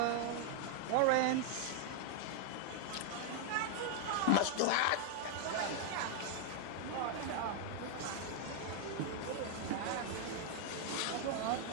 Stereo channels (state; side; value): different; both; correlation 0.00